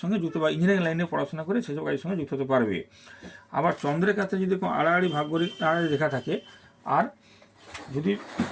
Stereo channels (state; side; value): identical; both; correlation 1.00